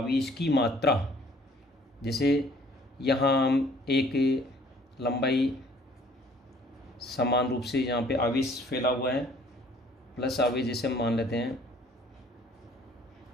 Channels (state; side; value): normal; both; correlation 0.56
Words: की मात्रा, जैसे यहाँ हम एक लंबाई समान रूप से यहाँ पे आवेश फैला हुआ है, प्लस आवेश जैसे हम मान लेते हैं,